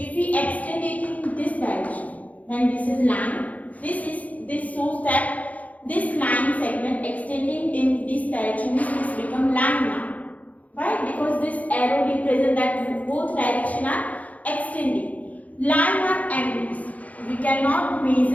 we extend it in this direction, then this is line. This shows that this line segment extending in this direction means this become line now. Why? Because this arrow represents that both directions are extending. Line are endless. We cannot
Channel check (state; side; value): late; right; 0.072 ms